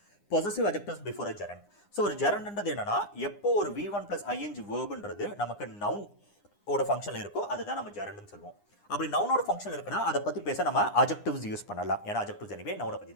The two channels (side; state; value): right; late; 9.8 ms